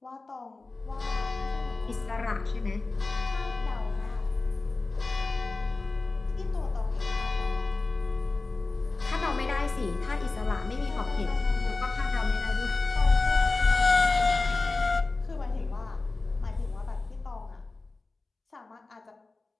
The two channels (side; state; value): right; quieter; 3.5 dB